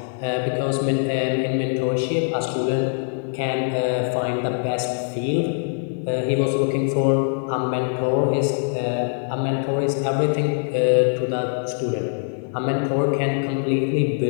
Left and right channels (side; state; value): right; silent; 57 dB below the other